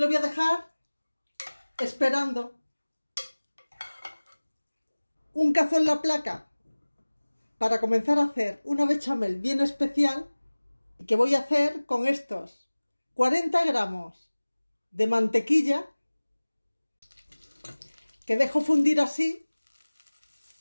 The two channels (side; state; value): both; inverted; correlation -1.00